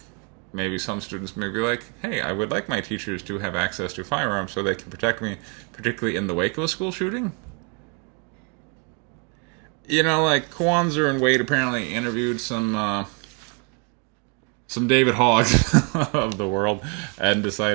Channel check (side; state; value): left; quieter; 34.6 dB